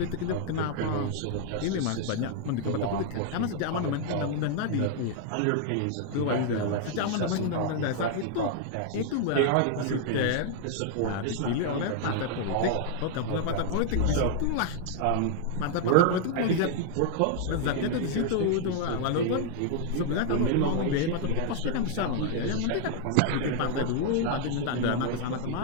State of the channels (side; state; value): both; different; correlation -0.01